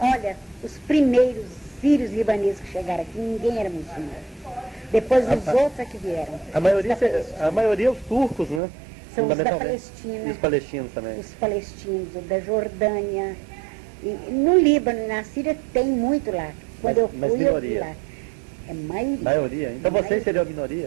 Olha, os primeiros sírios libaneses que chegaram aqui, ninguém era muçulmano. Depois os outros é que vieram. A maioria os turcos, né? São os da Palestina. E os palestinos também. Os palestinos, da Jordânia. E no Líbano e na Síria tem muito lá. Quando eu fui, eu vi lá. É maioria. Maioria? Então vocês seriam a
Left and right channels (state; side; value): drops out; left; at 8.6 s